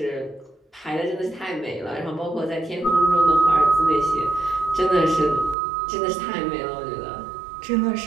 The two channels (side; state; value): left; drops out; at 5.6 s